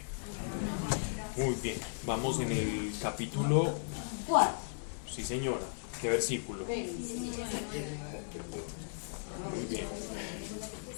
Muy bien, vamos en el capítulo 4. Sí, señora. ¿Qué versículo? Muy bien.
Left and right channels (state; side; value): silent; right; 54 dB below the other